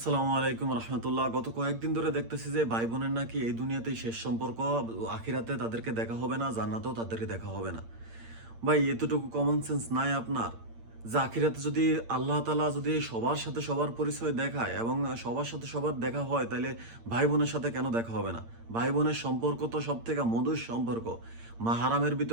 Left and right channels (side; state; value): left; late; 8.7 ms